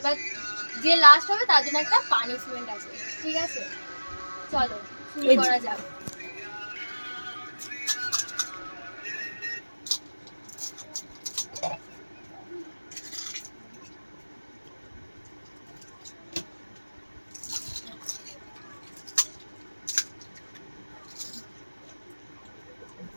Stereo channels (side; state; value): both; inverted; correlation -1.00